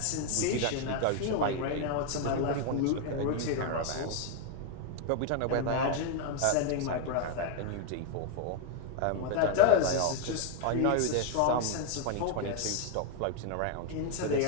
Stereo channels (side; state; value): both; different; correlation 0.00